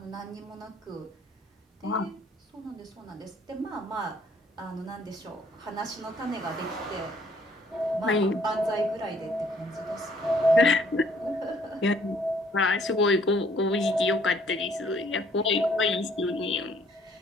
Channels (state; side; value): normal; both; correlation 0.61